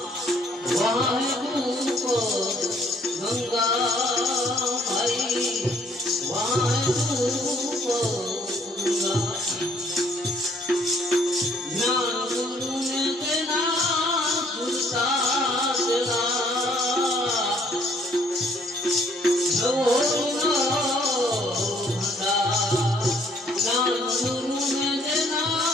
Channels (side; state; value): both; normal; correlation 0.63